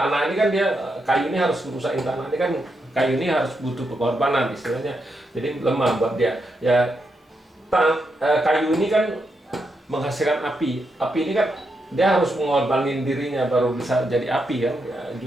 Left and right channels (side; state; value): both; normal; correlation 0.83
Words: ini kan dia, kayu ini harus merusakin tanah ini kan, kayu ini harus butuh pengorbanan istilahnya. Jadi lemah buat dia. Ya kayu ini kan menghasilkan api. Api ini kan dia harus mengorbanin dirinya baru bisa jadi api kan. Ya,